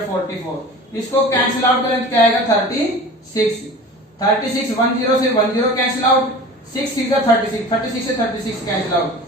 इसको कैंसिल आउट करें क्या आएगा 36 10 से 10 कैंसिल आउट, 6 6 जा 36 से 36 कैंसिल आउट,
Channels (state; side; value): normal; both; correlation 0.39